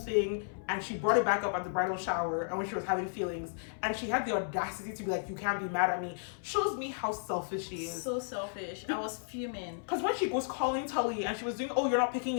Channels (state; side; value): silent; right; 55 dB below the other